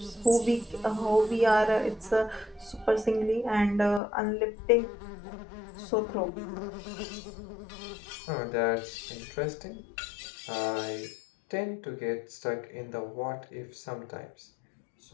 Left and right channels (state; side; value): drops out; right; at 4.0 s